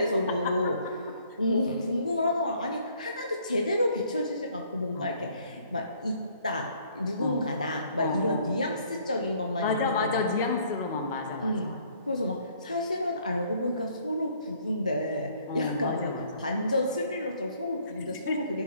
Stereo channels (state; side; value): inverted; both; correlation -0.62